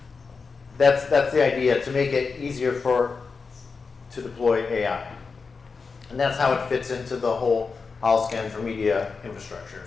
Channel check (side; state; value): right; quieter; 4.8 dB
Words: that's the idea, to make it easier to deploy AI. And that's how it fits into the whole Holoscan for media infrastructure.